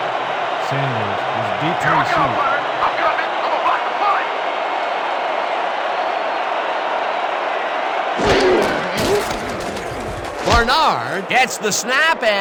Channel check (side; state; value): both; identical; correlation 1.00